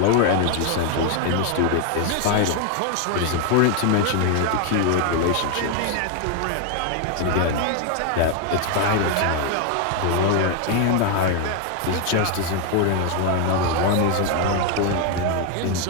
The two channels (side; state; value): both; different; correlation 0.00